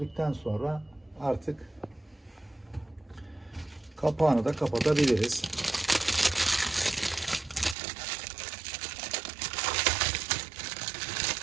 sonra artık kapağını da kapatabiliriz.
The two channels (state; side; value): drops out; left; at 7.8 s